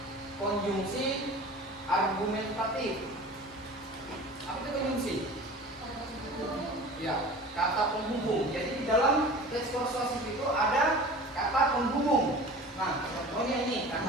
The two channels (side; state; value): both; normal; correlation 0.39